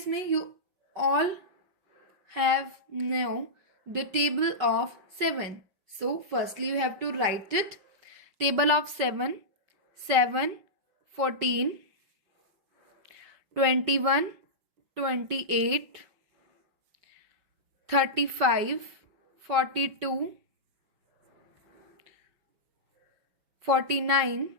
you all have know the table of 7. So firstly you have to write it. Table of 7, 7, 14, 21, 28, 35, 42, 49,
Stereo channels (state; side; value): late; left; 5.3 ms